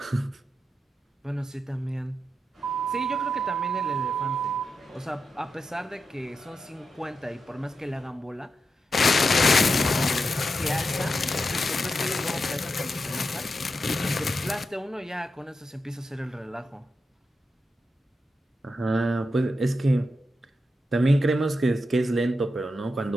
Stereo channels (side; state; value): both; normal; correlation 0.87